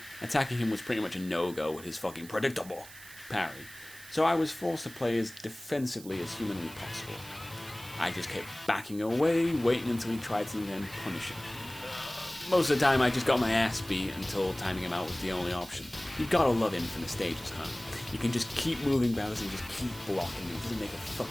Attacking him was pretty much a no-go with his fucking predictable parry, so I was forced to play as defensively as humanly possible. I just kept backing away, waiting until he tried something and punishing. Most of the time I just got my ass beat until timing him out was the only option. You gotta love Infinite Stages, huh? You can just keep moving battles and just keep blocking. It doesn't make a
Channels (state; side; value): noise; right; hiss, 17 dB below the sound